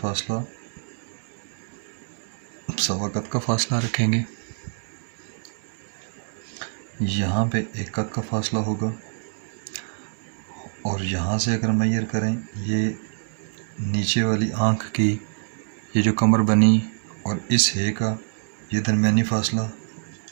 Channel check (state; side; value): silent; left; digital silence